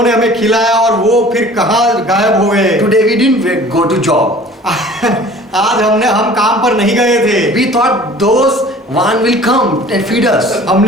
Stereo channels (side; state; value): both; normal; correlation 0.47